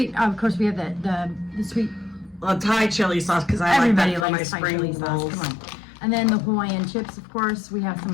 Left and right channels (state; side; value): drops out; right; at 4.2 s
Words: of course we have the sweet Thai chili sauce because I like that for my spring rolls. Come on. And then the Hawaiian chips, of course, we have some